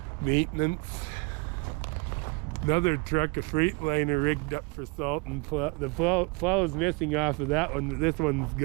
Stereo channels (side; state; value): left; quieter; 29.2 dB